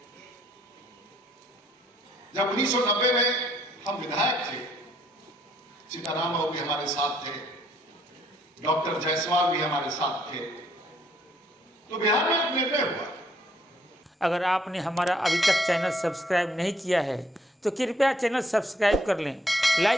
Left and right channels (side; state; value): both; normal; correlation 0.67